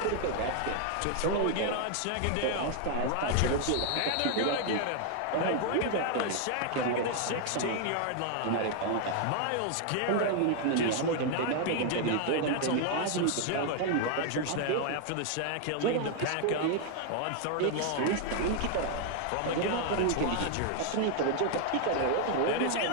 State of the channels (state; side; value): different; both; correlation 0.00